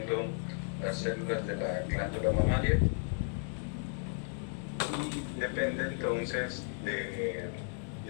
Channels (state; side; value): silent; right; 55 dB below the other